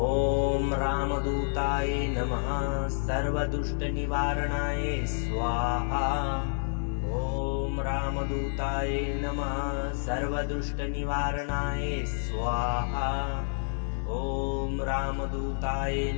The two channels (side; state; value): right; silent; digital silence